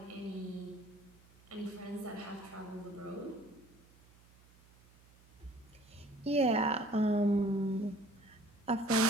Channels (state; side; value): noise; right; hum, 26 dB below the sound